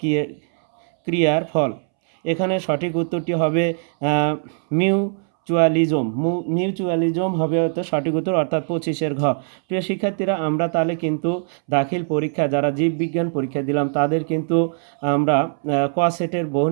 ফল? এখানে সঠিক উত্তরটি হবে মিউচুয়ালিজম হবে হয়তো সঠিক উত্তর, অর্থাৎ 25-এর ঘ। প্রিয় শিক্ষার্থীরা, আমরা তাহলে কিন্তু দাখিল পরীক্ষা যারা জীববিজ্ঞান পরীক্ষা দিলাম তাদের কিন্তু আমরা ক সেটের বহু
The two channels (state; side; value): silent; left; 65 dB below the other